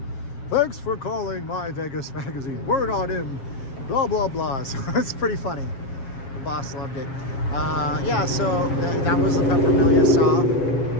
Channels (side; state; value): right; late; 7.4 ms